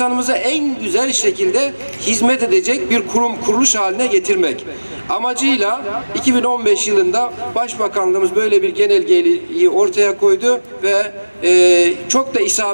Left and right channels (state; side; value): inverted; both; correlation -1.00